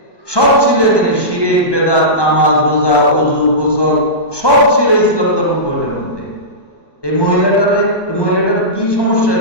সব ছিল এখানে। শিরক, বেদাত, নামাজ, রোজা, ওযু, গোসল সব ছিল ইসলাম ধর্ম বইটার মধ্যে। এই মহিলাটার কি সমস্যা?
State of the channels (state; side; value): late; right; 1.2 ms